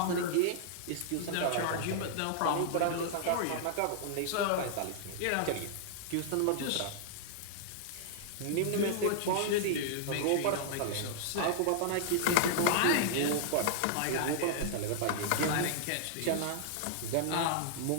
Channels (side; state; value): both; different; correlation -0.01